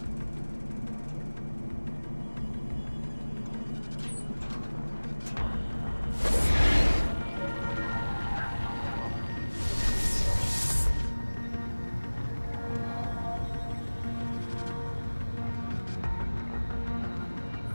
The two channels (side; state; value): both; inverted; correlation -1.00